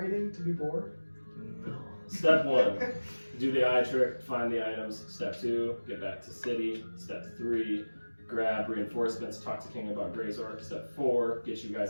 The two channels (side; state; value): both; inverted; correlation -1.00